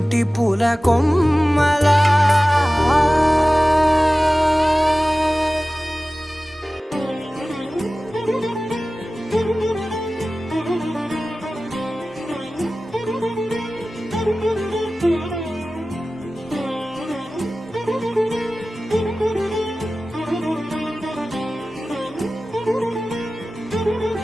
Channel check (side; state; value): both; normal; correlation 0.96